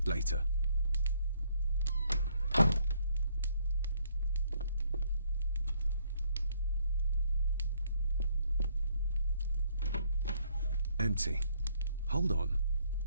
Later. Empty. Hold on.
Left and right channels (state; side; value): inverted; both; correlation -0.68